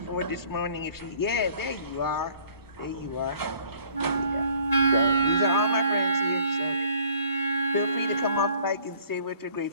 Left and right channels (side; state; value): both; inverted; correlation -0.56